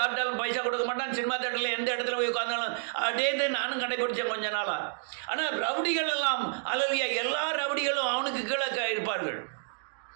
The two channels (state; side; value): silent; left; digital silence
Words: பைசா கொடுக்க மாட்டான். சினிமா தேட்டரில் எந்த இடத்துல போய் உட்காந்தாலும் அதே நானும் கடைபிடிச்சேன் கொஞ்ச நாளாக. ஆனால் ரவுடிகள் எல்லாம் அல்லலையா எல்லா ரவுடிகளும் அவனுக்கு கீழே இருப்பார்கள்.